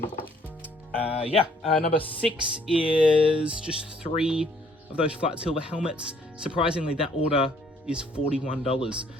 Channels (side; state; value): both; normal; correlation 0.63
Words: 6 is just 3 of those flat silver helmets. Surprisingly, that order is $41.